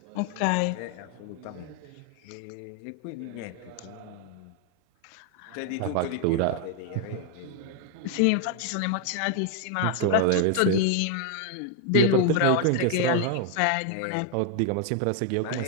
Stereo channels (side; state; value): both; different; correlation 0.00